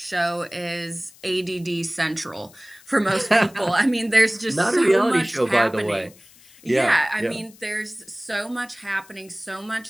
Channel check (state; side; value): noise; left; hiss, 25 dB below the sound